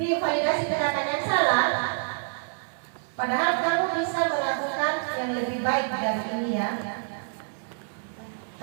validasi tindakan yang salah, padahal kamu bisa melakukan yang lebih baik dari ini ya.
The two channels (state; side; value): silent; left; digital silence